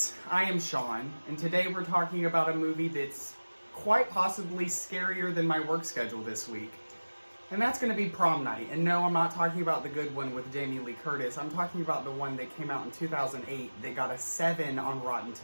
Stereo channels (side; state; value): both; inverted; correlation -1.00